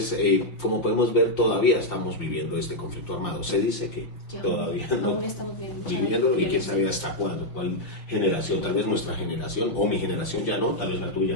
como podemos ver, todavía estamos viviendo este conflicto armado. Se dice que todavía no estamos viviendo, y quién sabe hasta cuándo, cuál generación, tal vez nuestra generación, o mi generación ya no, tal vez la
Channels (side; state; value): right; late; 5.6 ms